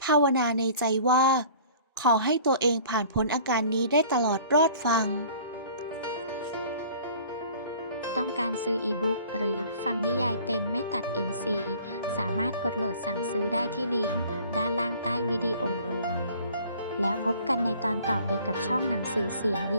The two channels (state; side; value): inverted; both; correlation -0.49